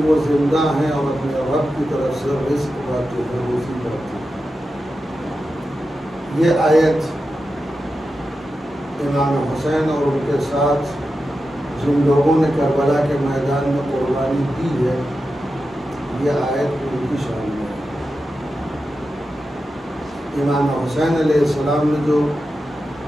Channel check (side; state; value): both; normal; correlation 0.90